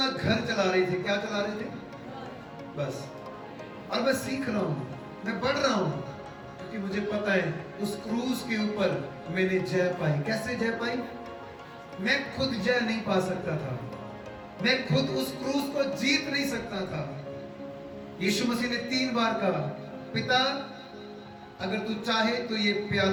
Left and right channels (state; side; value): identical; both; correlation 1.00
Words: घर चला रहे थे। क्या चला रहे थे? बस। और मैं सीख रहा हूं, मैं बढ़ रहा हूं, क्योंकि मुझे पता है उस क्रूज के ऊपर मैंने जय पाई। कैसे जय पाई? मैं खुद जय नहीं पा सकता था, मैं खुद उस क्रूज को जीत नहीं सकता था। यीशु मसीह ने 3 बार कहा, पिता अगर तू चाहे तो ये